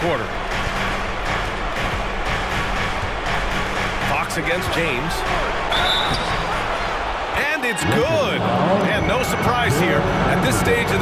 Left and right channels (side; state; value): both; identical; correlation 1.00